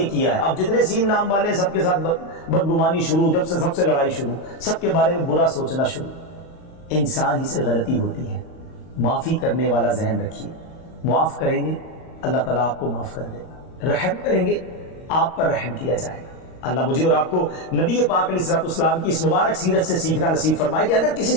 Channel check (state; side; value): late; right; 38 ms